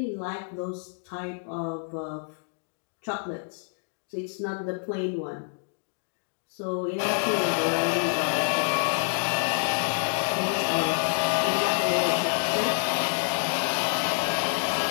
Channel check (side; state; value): right; silent; digital silence